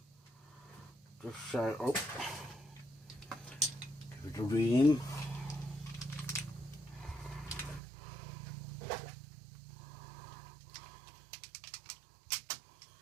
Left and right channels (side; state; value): left; drops out; at 7.8 s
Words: just show up. Give it a ream.